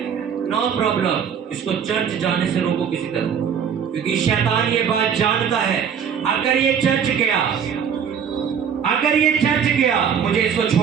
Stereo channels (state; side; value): quieter; left; 7.6 dB